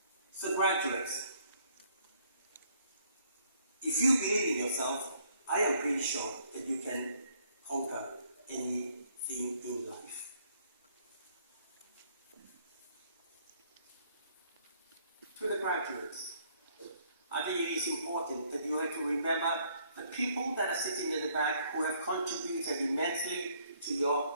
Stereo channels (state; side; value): inverted; both; correlation -0.66